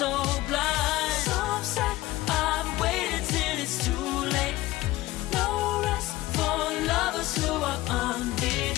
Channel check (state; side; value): quieter; right; 17.6 dB